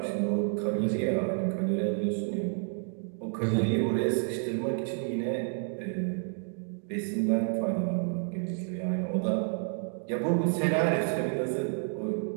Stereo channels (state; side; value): silent; left; 58 dB below the other